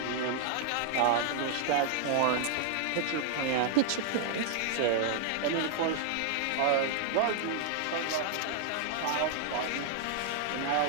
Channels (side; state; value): both; different; correlation 0.00